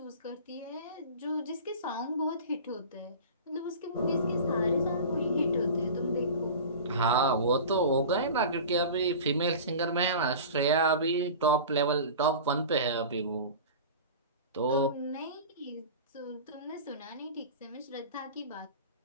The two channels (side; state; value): both; inverted; correlation -0.35